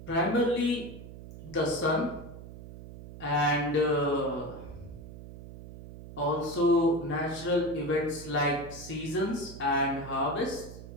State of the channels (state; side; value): noise; right; hum, 14 dB below the sound